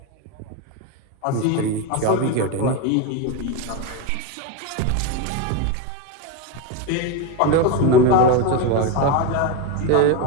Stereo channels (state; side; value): different; both; correlation 0.04